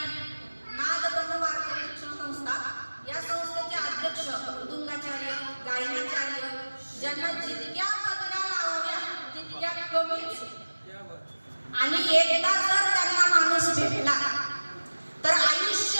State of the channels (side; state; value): both; inverted; correlation -1.00